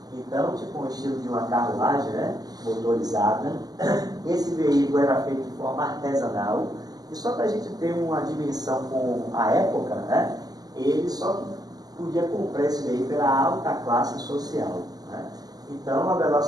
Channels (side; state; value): left; late; 0.19 ms